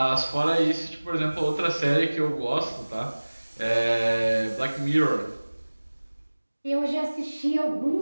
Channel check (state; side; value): inverted; both; correlation -1.00